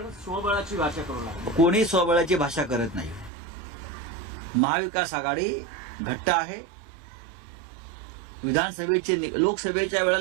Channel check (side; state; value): left; drops out; at 3.3 s